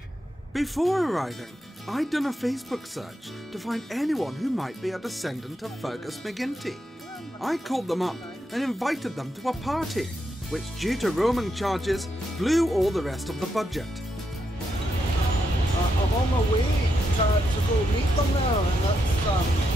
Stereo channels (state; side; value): normal; both; correlation 0.82